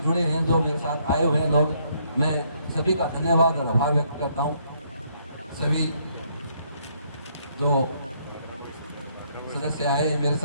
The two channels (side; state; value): both; inverted; correlation -0.70